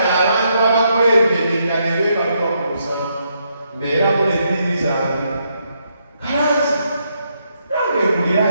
abantu abakwembedeka ne beebalwa ku musanvu mbeeramu n'ebbiri zange kalanzi nange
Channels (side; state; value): both; inverted; correlation -0.77